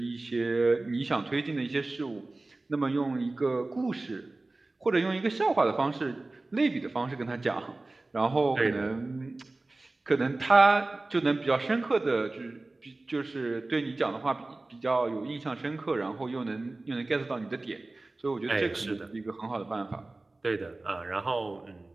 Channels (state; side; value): quieter; left; 3.1 dB